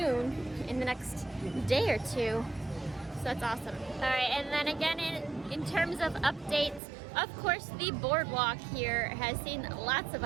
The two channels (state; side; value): drops out; left; at 6.8 s